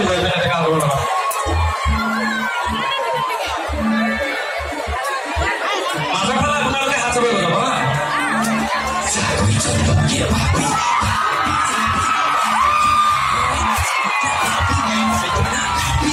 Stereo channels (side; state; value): both; identical; correlation 1.00